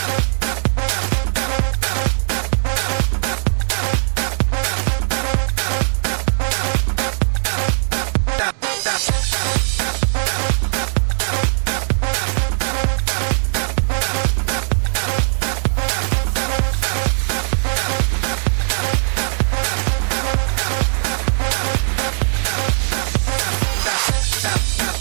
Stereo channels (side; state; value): left; silent; digital silence